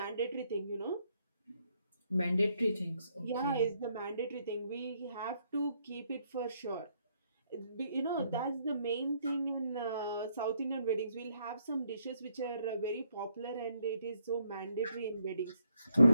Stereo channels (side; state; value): both; inverted; correlation -0.73